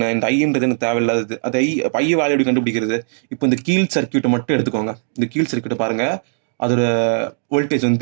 இந்த ஐன்றது எனக்கு தேவையில்லாதது. அது ஐ வேல்யூ எப்படி கண்டுபிடிக்கிறது, இப்போ இந்த கீழ் சர்க்கியூட்டை மட்டும் எடுத்துக்கோங்க. இந்த கீழ் சர்க்கியூட்டை பாருங்க, அதோட வோல்டேஜ்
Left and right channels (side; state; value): left; silent; digital silence